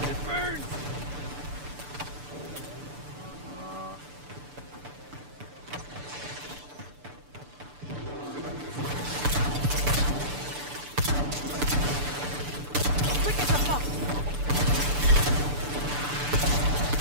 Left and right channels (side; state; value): left; late; 6.9 ms